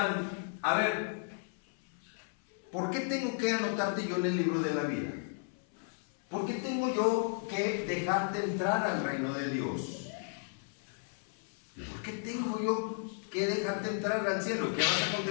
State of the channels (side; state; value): right; silent; 55 dB below the other